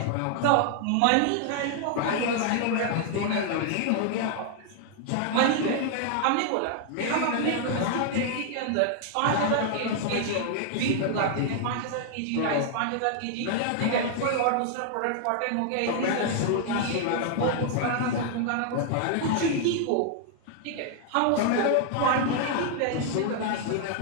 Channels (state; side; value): different; both; correlation 0.00